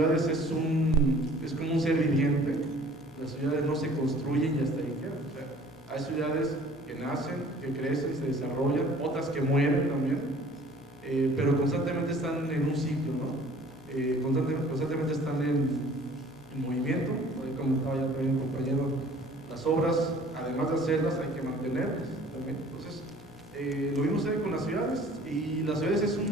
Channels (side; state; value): both; normal; correlation 0.51